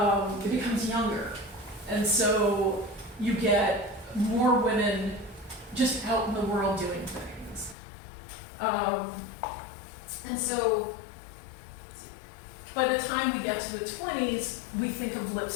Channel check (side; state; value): right; drops out; at 7.8 s